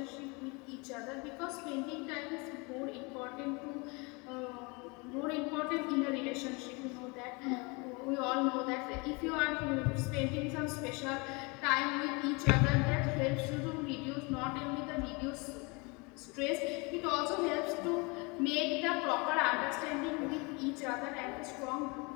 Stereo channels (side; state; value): right; quieter; 28.9 dB